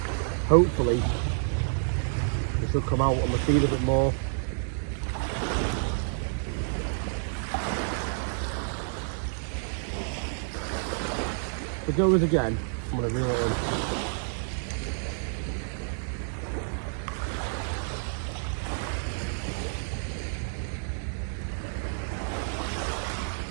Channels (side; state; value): left; silent; digital silence